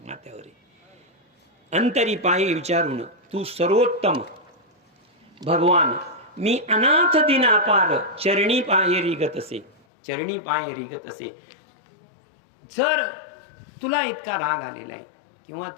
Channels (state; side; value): drops out; right; at 9.8 s